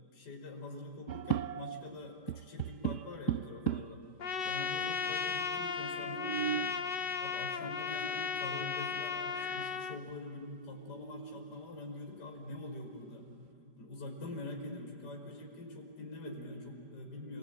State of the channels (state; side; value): late; right; 5.0 ms